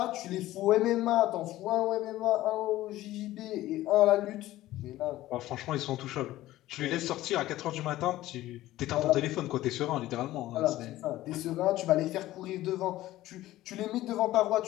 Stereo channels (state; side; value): quieter; right; 15.6 dB